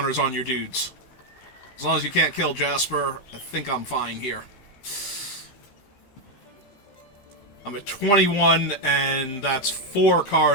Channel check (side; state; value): right; late; 15 ms